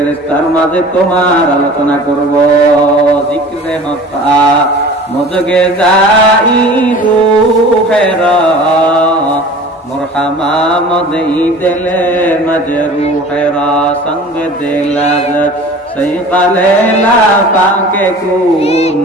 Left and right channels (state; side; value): normal; both; correlation 0.42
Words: মাঝে তোমার আলোচনা করব। জিক্রে হতা মজগে যাই রূহেরা মুরহামা মদই দিলে মজরুহেরা সঙ্গ দিলাজ সৈকালে লাফাকে কুন